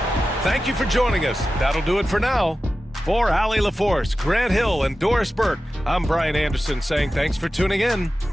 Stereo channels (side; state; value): both; normal; correlation 0.94